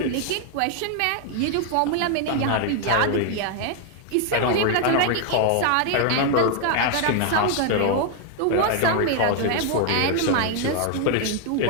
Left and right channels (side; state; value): both; different; correlation 0.00